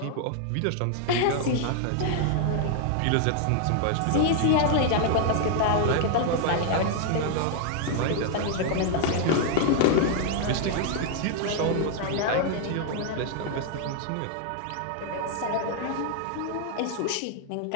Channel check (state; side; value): different; both; correlation 0.00